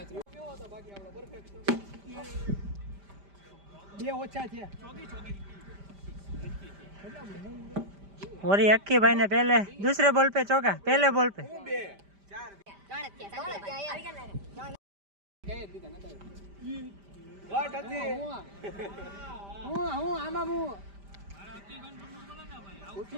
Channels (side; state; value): left; late; 5.0 ms